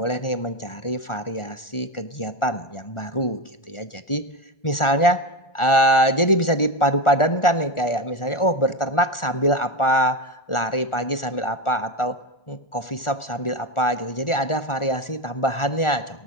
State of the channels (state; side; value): late; right; 1.4 ms